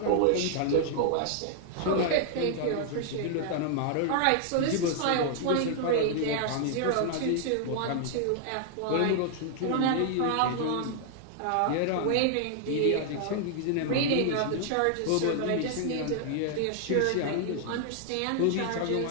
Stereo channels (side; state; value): both; different; correlation 0.00